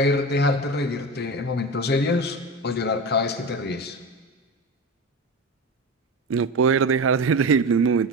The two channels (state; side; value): normal; both; correlation 0.25